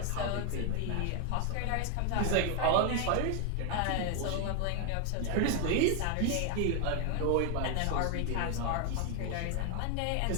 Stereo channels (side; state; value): both; different; correlation 0.01